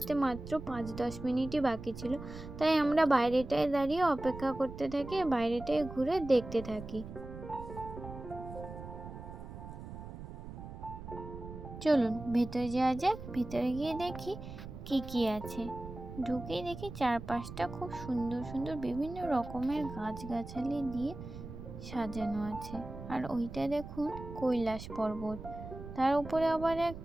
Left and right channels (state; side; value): noise; right; rumble, 11 dB below the sound